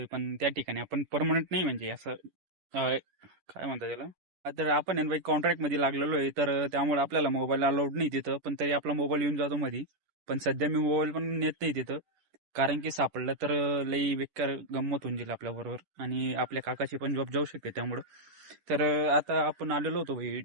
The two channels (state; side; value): late; left; 10 ms